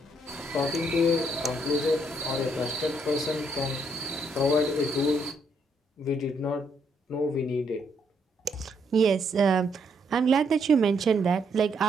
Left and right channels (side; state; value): both; normal; correlation 0.73